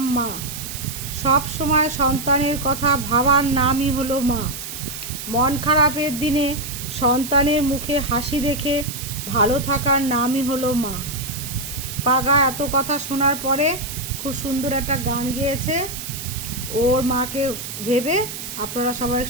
মা। সব সময় সন্তানের কথা ভাবার নামই হলো মা। মন খারাপের দিনে সন্তানের মুখে হাসি দেখে ভালো থাকার নামই হলো মা। পাগা এত কথা শোনার পরে খুব সুন্দর একটা গান গেয়েছে ওর মাকে ভেবে। আপনারা সবাই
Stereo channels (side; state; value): right; noise; hiss, 8 dB below the sound